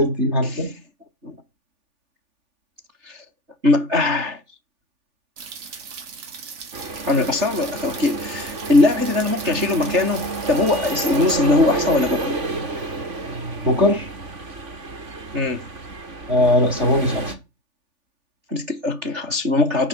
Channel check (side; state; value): left; late; 3.4 ms